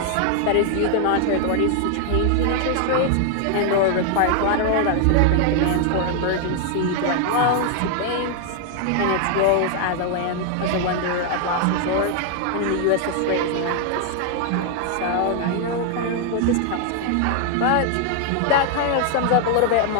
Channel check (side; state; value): both; different; correlation 0.00